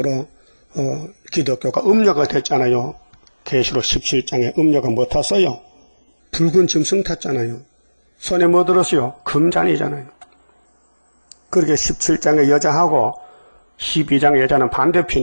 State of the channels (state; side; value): inverted; both; correlation -1.00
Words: 기독교가 음료가 됐잖아요. 계시록 17장에 음료가 뭐 탔어요? 붉은 짐승 탔잖아요. 손에 뭐 들었어요? 금잔이잖아요. 그렇게 17장의 여자하고 12장의 여자는